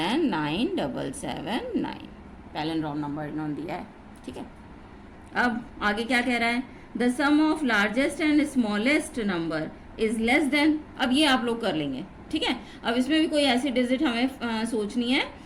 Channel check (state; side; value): identical; both; correlation 1.00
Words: 9779, palindrome number इन्होंने दिया है, ठीक है। अब आगे क्या कह रहा है, the sum of largest and smallest number is less than. अब ये आप लोग कर लेंगे, ठीक है। अब इसमें भी कोई ऐसी डिजिट हमें सोचनी है